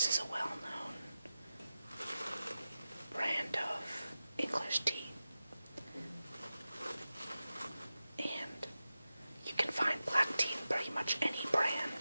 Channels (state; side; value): inverted; both; correlation -0.93